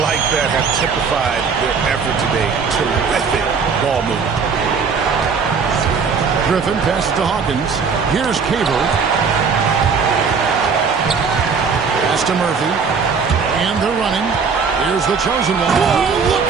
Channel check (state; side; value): quieter; left; 5.6 dB